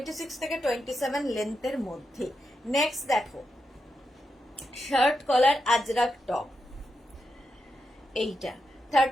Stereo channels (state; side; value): normal; both; correlation 0.86